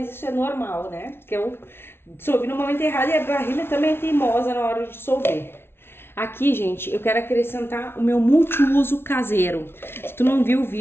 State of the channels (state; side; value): late; right; 0.12 ms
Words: isso é normal, né? Porque eu dissolvi no momento errado e a barrilha também é teimosa na hora de dissolver. Aqui, gente, eu quero acrescentar o meu multiuso caseiro. Se tu não viu o